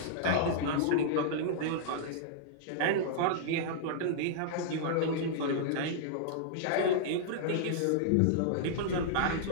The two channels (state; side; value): different; both; correlation -0.01